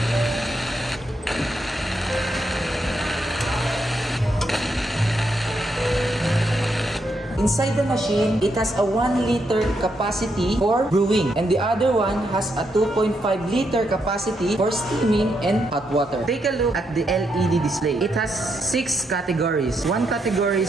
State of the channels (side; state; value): both; normal; correlation 0.80